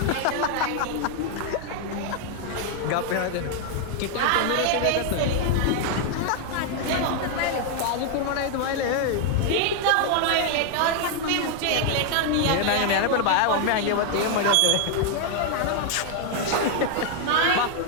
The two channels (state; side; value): different; both; correlation 0.00